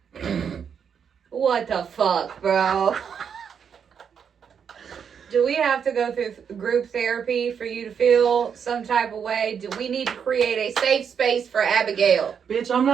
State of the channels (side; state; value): left; quieter; 7.3 dB